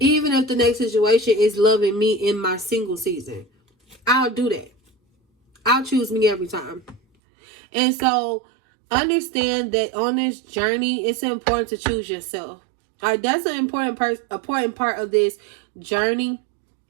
if the next situation is loving me in my single season, I'll do that. I'll choose me every time. And so understand that on this journey, it's important to choose yourself. All right, that's an important part of this journey.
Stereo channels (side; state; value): left; drops out; at 7.0 s